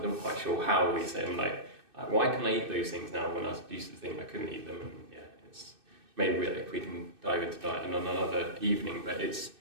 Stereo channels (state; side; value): late; left; 2.6 ms